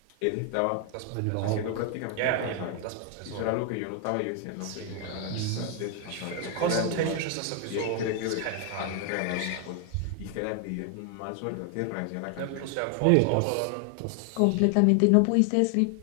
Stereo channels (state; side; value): different; both; correlation 0.00